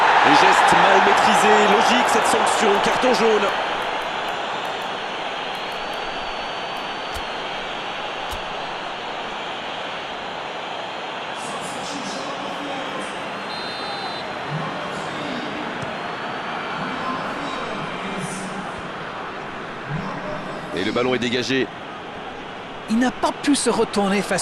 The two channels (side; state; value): both; identical; correlation 1.00